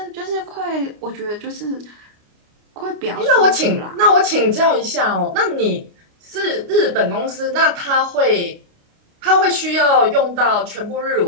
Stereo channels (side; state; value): left; late; 29 ms